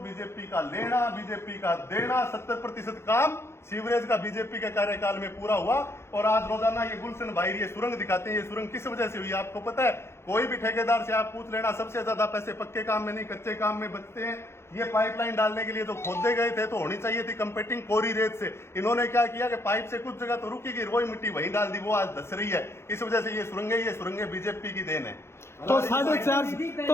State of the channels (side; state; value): right; late; 0.12 ms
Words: का लेना, बीजेपी का देना, 70% काम सीवरेज का बीजेपी के कार्यकाल में पूरा हुआ। और आज रोजाना ये गुलशन भाई ये सुरंग दिखाते हैं। ये सुरंग किस वजह से हुई आपको पता है? कोई भी ठेकेदार से आप पूछ लेना, सबसे ज्यादा पैसे पक्के काम में नहीं कच्चे काम में बचते हैं। ये पाइपलाइन डालने के लिए तो खोदे गए थे, तो होनी चाहिए थी कंपेटिंग कोरी रेत से। इन्होंने क्या किया कि पाइप से कुछ जगह तो रुकी गई, वही मिट्टी वहीं डाल दी, वो आज धस रही है। इस वजह से ये सुरंगें बीजेपी की देन है। तो